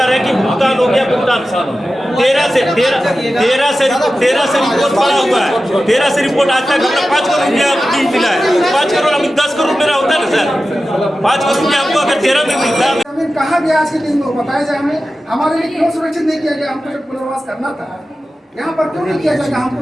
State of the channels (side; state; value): both; normal; correlation 0.94